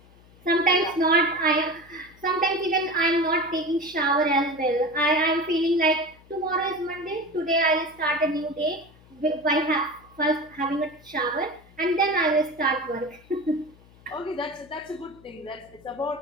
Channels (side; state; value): left; noise; hum, 26 dB below the sound